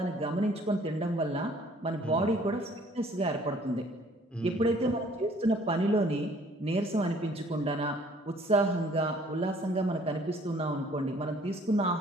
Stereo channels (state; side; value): normal; both; correlation 0.57